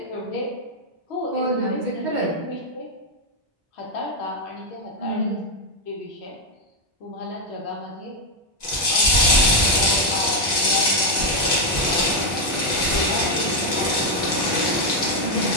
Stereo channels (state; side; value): normal; both; correlation 0.03